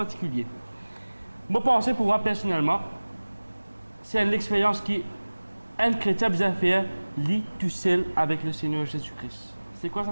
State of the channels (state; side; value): inverted; both; correlation -1.00